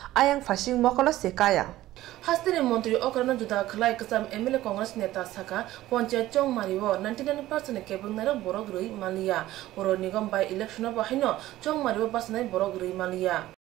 ayang phasing mokolo sekaya Hastini Montri Okrana Juda Khlai Kasam MLA Congress Neta Saka Panchayat Chongmariwo 99% Kebung Nara Borogrui Malia Boro Nigam by election of Bahino Chongmariwo Basnai Borogrui Malia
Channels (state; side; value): quieter; left; 15.4 dB